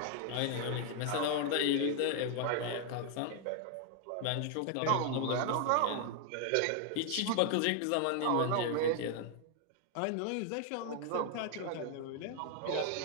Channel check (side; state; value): both; different; correlation 0.00